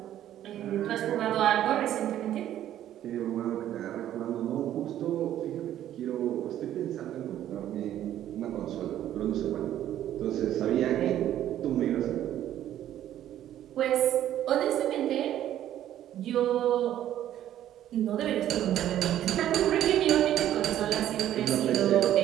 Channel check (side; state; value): left; quieter; 11.9 dB